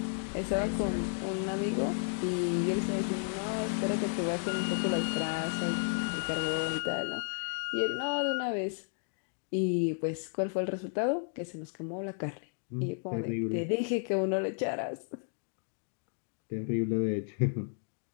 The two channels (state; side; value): silent; right; digital silence